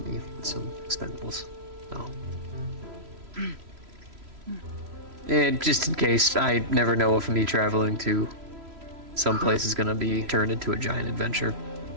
me with some expendables. Oh. And just in case, I never know if me traveling to some place is gonna be turned into a giant adventure.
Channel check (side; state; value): left; late; 3.0 ms